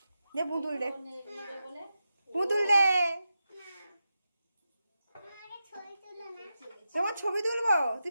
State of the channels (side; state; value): both; inverted; correlation -0.90